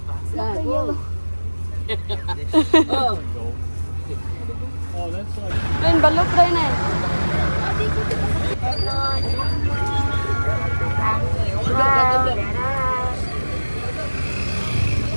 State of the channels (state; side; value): inverted; both; correlation -1.00